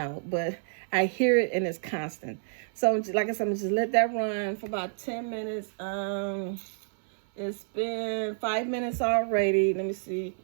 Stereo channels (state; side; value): silent; left; 59 dB below the other